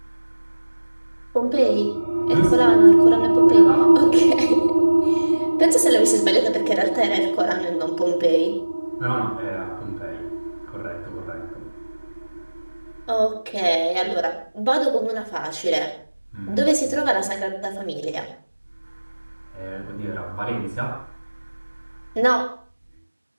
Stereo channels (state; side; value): inverted; both; correlation -1.00